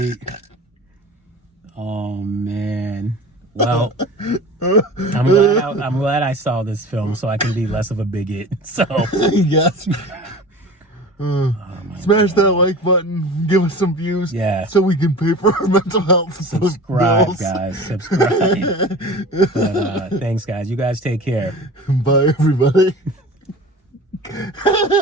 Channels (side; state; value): both; normal; correlation 0.37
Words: Oh man. Well, I'm glad I saw this film so I can be less of a bigot. So yes. Smash that like button, give us some views, so we can pay for our mental health. Subscribe, guys. Subscribe. But, thanks, guys. You guys take care. Bye, everybody.